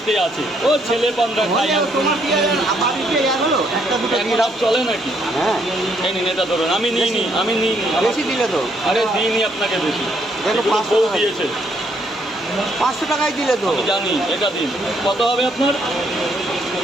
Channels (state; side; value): normal; both; correlation 0.71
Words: আছে, ও ছেলে পান্ডা খাই। তোমার পেঁয়াজ বাড়িতে হলো একটা দুটো এখন চলে নাকি? হ্যাঁ, এই নিন, এটা ধরুন। আমি নিইনি, আমি নিইনি। বেশি দিলে তো। আরে দিইনি আপনাকে বেশি, দেখো, এগুলো 500 বউ টাকা দিয়েছে। 500 টাকায় দিলে তো। আমি জানি, এটা দিন। কত হবে আপনার?